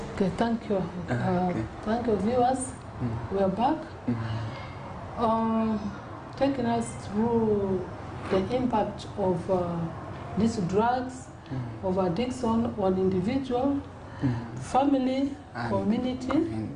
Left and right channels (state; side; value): identical; both; correlation 1.00